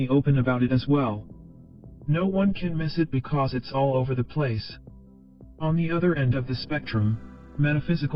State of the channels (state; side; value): identical; both; correlation 1.00